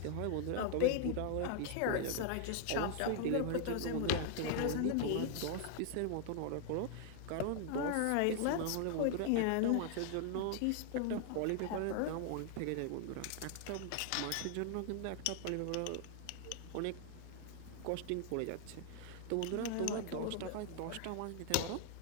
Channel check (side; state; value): both; different; correlation 0.00